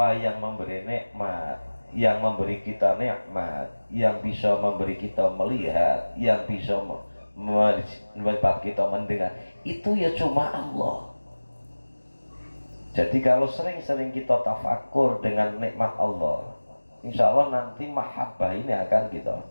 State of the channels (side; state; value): both; inverted; correlation -1.00